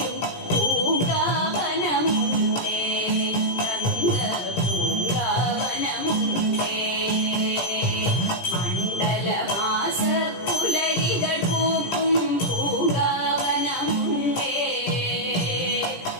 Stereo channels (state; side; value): late; right; 17 ms